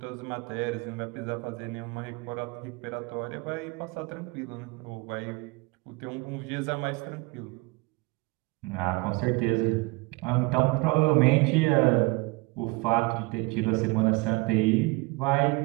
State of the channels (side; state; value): left; quieter; 25.0 dB